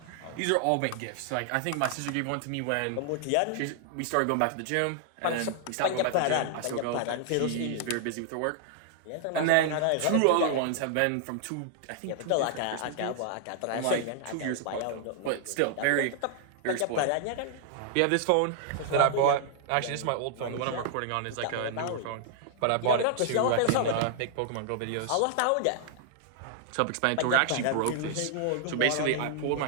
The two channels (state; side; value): different; both; correlation -0.01